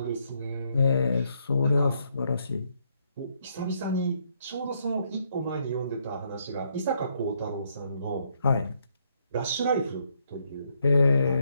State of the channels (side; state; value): both; inverted; correlation -0.73